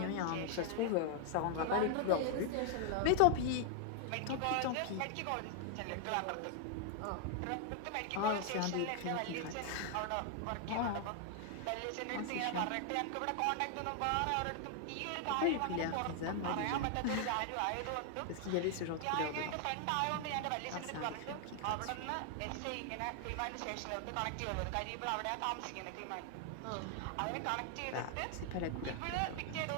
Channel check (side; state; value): both; different; correlation 0.00